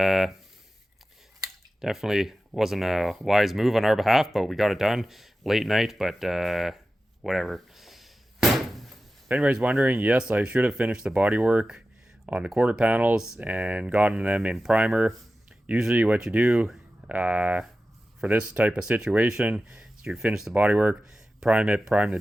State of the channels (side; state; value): both; normal; correlation 0.94